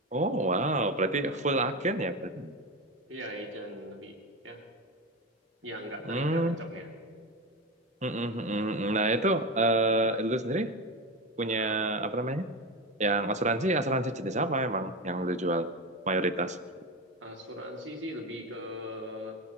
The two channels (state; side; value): normal; both; correlation 0.19